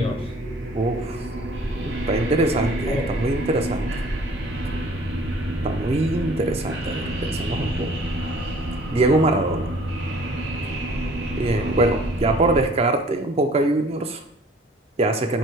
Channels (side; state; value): both; normal; correlation 0.52